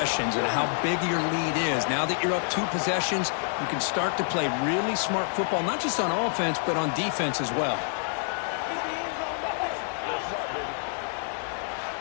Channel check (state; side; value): silent; right; digital silence